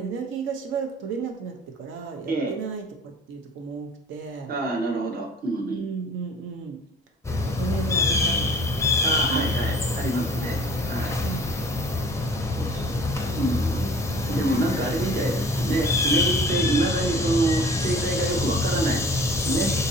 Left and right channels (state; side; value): normal; both; correlation 0.49